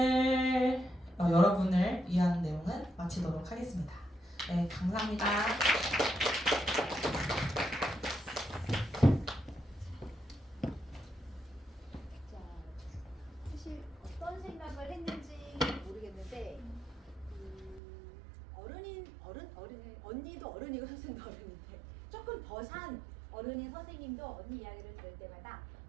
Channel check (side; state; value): left; drops out; at 17.8 s